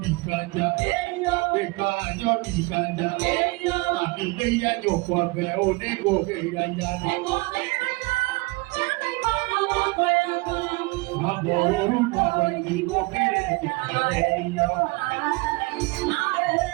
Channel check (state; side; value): quieter; left; 25.7 dB